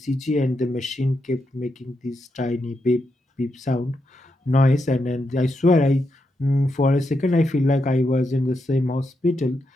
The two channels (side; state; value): both; normal; correlation 0.84